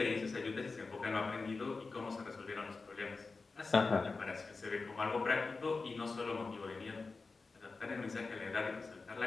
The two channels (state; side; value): quieter; right; 4.1 dB